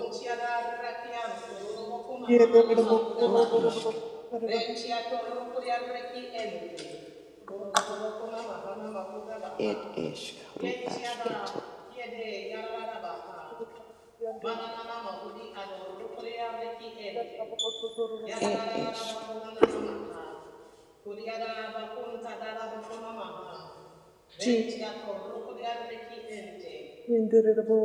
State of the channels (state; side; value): identical; both; correlation 1.00